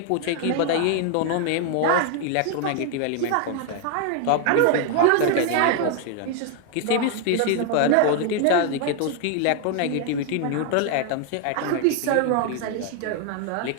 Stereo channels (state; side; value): different; both; correlation 0.00